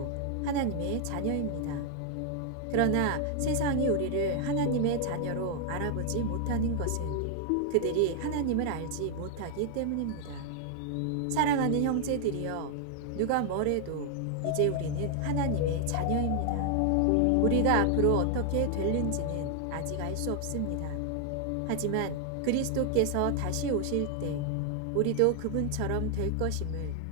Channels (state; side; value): different; both; correlation 0.00